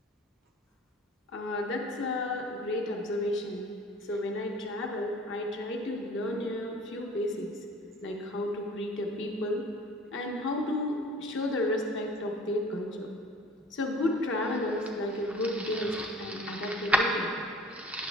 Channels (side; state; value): both; normal; correlation 0.47